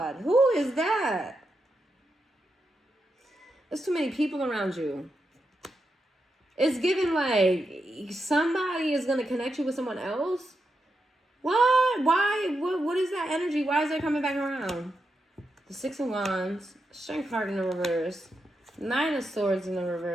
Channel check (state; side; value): normal; both; correlation 0.86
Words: Who is that? There's too many people around you. It's given like somebody is going to connect you with someone else. What? Why? What is that energy? Why is that coming back around? The Six of Wands, Strength card in the reverse, Nine of Swords in the